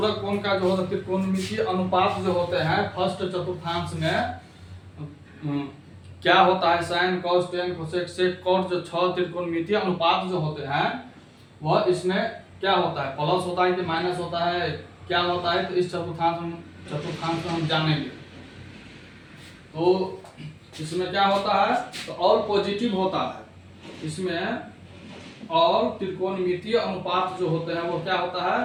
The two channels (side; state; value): both; identical; correlation 1.00